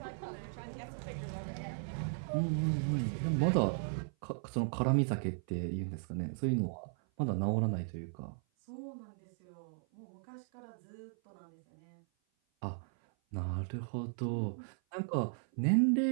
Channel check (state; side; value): silent; left; 53 dB below the other